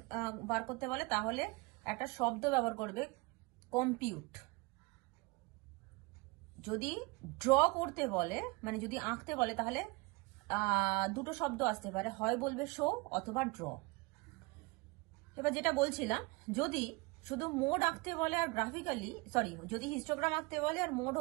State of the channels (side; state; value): left; quieter; 25.3 dB